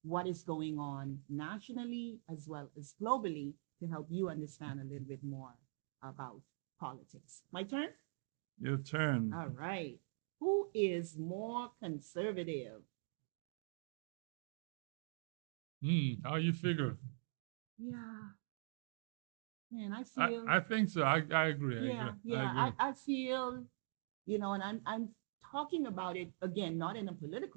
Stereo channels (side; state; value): left; silent; digital silence